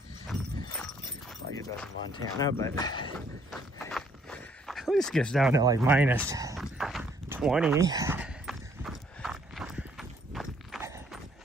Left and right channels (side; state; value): both; normal; correlation 0.65